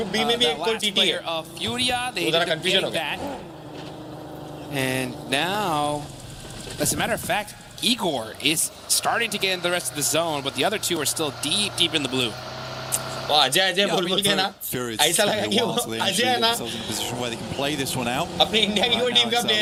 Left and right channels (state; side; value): identical; both; correlation 1.00